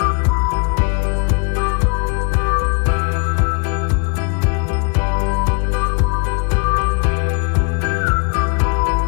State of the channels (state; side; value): quieter; right; 33.1 dB